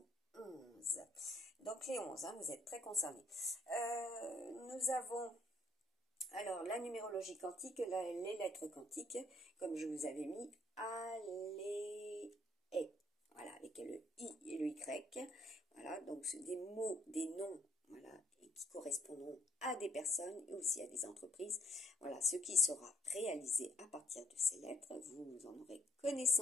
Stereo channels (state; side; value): normal; both; correlation 0.68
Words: 11. Donc les 11, hein, vous êtes très concernés. Nous avons alors la numérologie quantique, les lettres quantiques, comme je vous avais mis, voilà, avec le I et le Y, voilà, donc c'est des mots, des noms, voilà, et qui correspondront à des personnes et aussi à des entreprises, voilà, ce qui sera réalisé à partir de ces lettres, vous en aurez